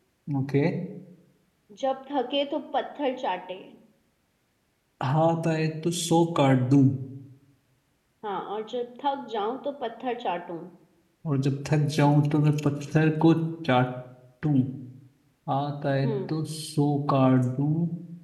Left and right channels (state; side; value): identical; both; correlation 1.00